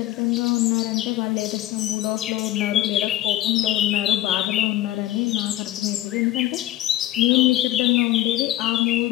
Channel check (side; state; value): right; quieter; 14.4 dB